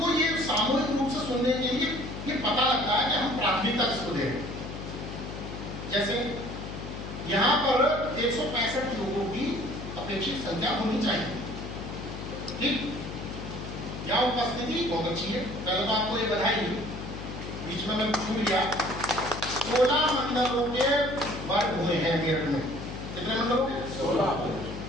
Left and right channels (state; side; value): noise; left; hum, 9 dB below the sound